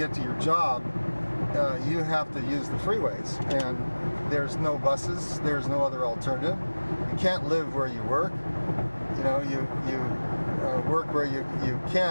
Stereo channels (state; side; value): inverted; both; correlation -1.00